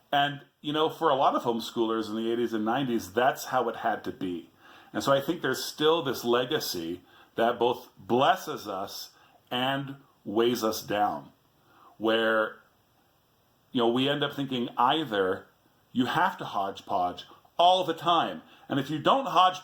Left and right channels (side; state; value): both; identical; correlation 1.00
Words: And, for a lot of homeschoolers in the 80s and 90s, that's how it had to be. And so I think there's still this legacy that both blesses us and weighs us down. where, we end up thinking either you have to hodgepodge all the time. And if you don't